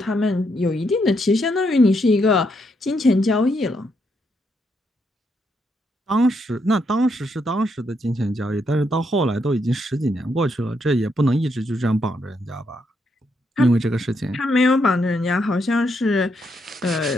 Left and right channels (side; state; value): both; normal; correlation 0.78